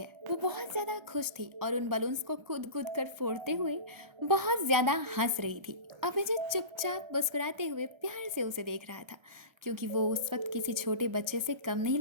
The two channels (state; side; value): late; left; 1.3 ms